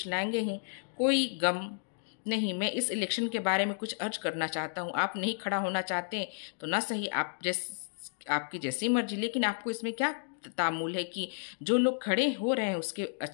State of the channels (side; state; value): right; silent; digital silence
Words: लाएंगे ही, कोई गम नहीं। मैं इस इलेक्शन के बारे में कुछ अर्ज करना चाहता हूँ। आप नहीं खड़ा होना चाहते तो ना सही, आपकी जैसी मर्जी, लेकिन आपको इसमें क्या तामुल है कि जो लोग खड़े हो रहे हैं उसके